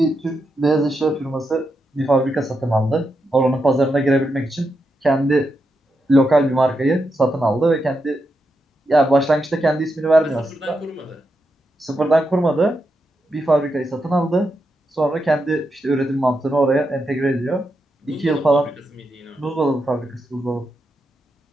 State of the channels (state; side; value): normal; both; correlation 0.85